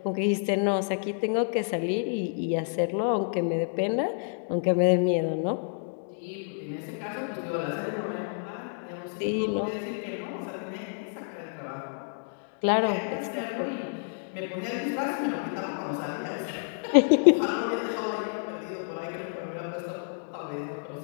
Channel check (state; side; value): silent; right; digital silence